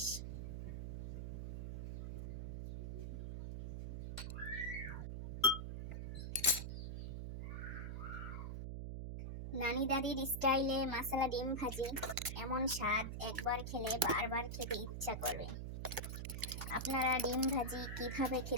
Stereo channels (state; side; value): noise; right; hum, 5 dB below the sound